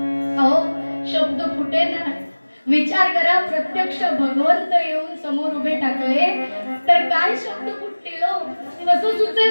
अहो शब्द फुटेना. विचार करा, प्रत्यक्ष भगवंत येऊन समोर उभे टाकले तर काय शब्द फुटतील, कसं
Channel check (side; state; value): both; inverted; correlation -1.00